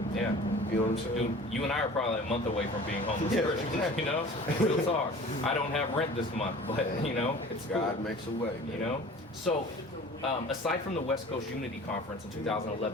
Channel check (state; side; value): normal; both; correlation 0.43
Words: You know what I'm saying? Dude, you and I are probably a month away from being homeless Christians, you know? Real talk. I don't have rent this month, but, you know, it's God cool. makes a way, man. You know? So, aside from the West Coast Unity Conference in